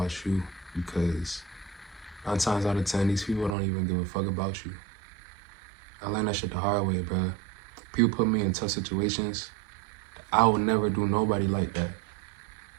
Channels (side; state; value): left; drops out; at 3.6 s